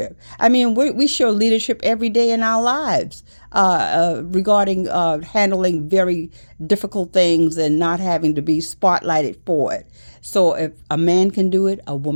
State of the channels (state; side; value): inverted; both; correlation -1.00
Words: I mean, we show leadership every day in our lives, regarding handling very difficult things and not having to be spotlighted for it. So if a man can do it, a